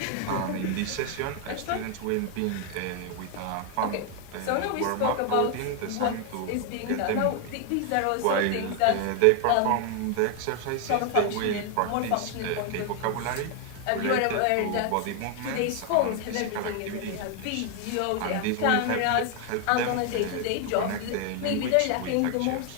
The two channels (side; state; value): both; different; correlation 0.00